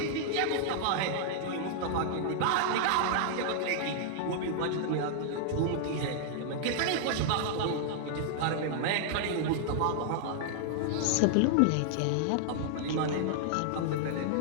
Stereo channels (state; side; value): different; both; correlation -0.01